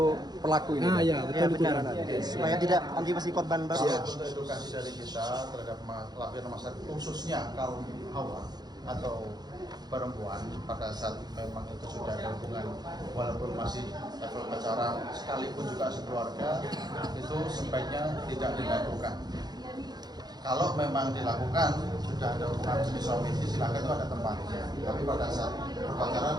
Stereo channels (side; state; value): left; late; 0.20 ms